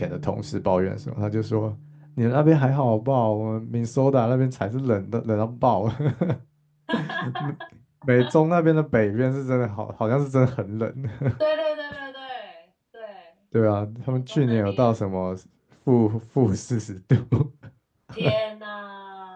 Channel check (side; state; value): both; identical; correlation 1.00